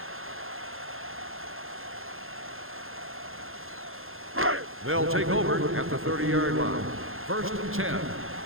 They'll take over at the 30-yard line. 1st and 10.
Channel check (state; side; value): late; left; 0.60 ms